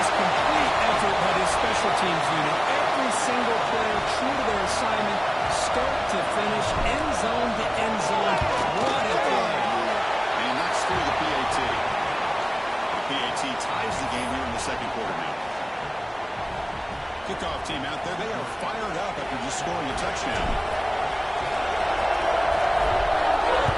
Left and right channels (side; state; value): both; identical; correlation 1.00